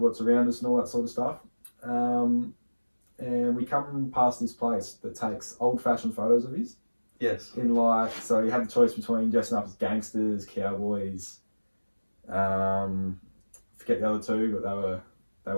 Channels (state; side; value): inverted; both; correlation -1.00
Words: around us and all that sort of stuff. And we come past this place that takes old-fashioned photos of his. Yes. In so you had the choice between dressing up as gangsters, cowboys. Forget the other two, but they